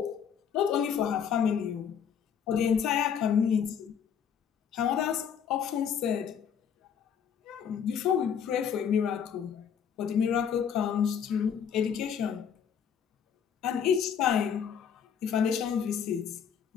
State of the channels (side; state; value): right; quieter; 7.8 dB